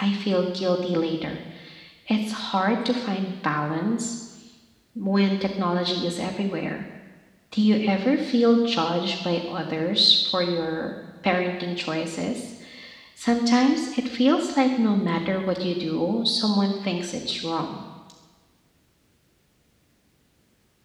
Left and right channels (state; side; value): identical; both; correlation 1.00